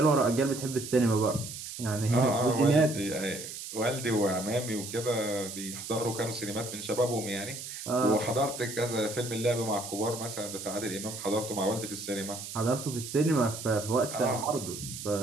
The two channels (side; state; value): right; noise; hiss, 9 dB below the sound